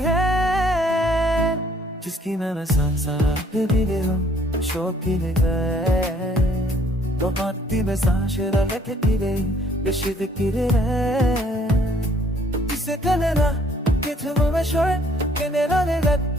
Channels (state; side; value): normal; both; correlation 0.62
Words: है जिसकी मैं सांसा भी दे हूँ शौकीन है। Domatti mesajı da lettere Beşidi kirere Ise kalena Gitme ve şöyle Generale gat